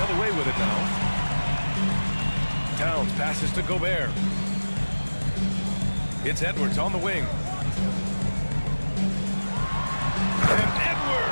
other way with it now. Towns passes to Gobert. It's Edwards on the wing. And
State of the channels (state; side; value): inverted; both; correlation -1.00